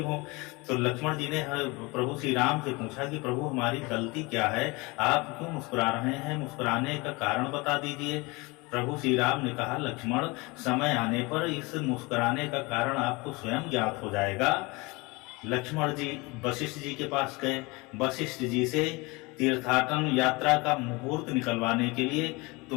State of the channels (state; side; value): quieter; right; 25.2 dB